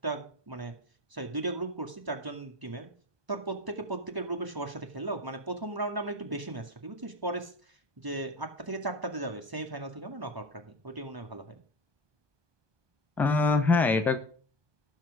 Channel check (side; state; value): left; late; 1.2 ms